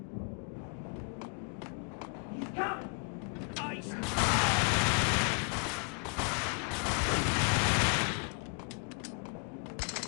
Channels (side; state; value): right; quieter; 39.7 dB